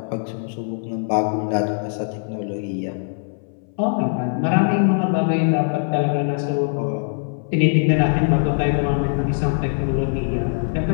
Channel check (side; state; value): right; silent; 62 dB below the other